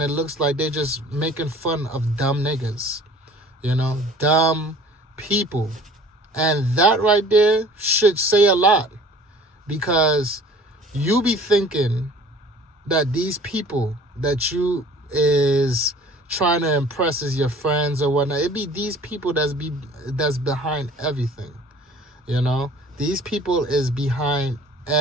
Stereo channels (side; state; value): both; normal; correlation 0.49